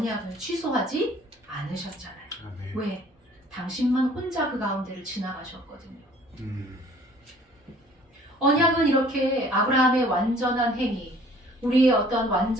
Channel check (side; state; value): both; normal; correlation 0.54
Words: 취소하지 않으셨잖아요. 아멘. 왜? 당신만 혼자 그 가운데를 지나가셨거든요. 언약은 이렇게 아브라함의 완전한 행위, 우리의 어떤